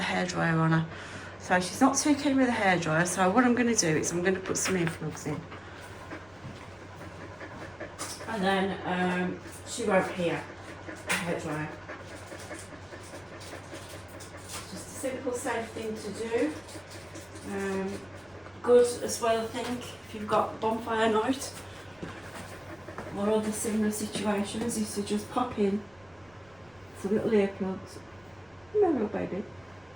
hairdryer on her. So she's not too keen with the hairdryer, so what I'm going to do is I'm going to put some earplugs in. And then she won't hear the hairdryer. Just a simple, safe thing to do. Good as well, I think, if you've got bonfire night or other similar situations, is to just pop in some little earplugs. No, little baby.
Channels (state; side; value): noise; right; rumble, 30 dB below the sound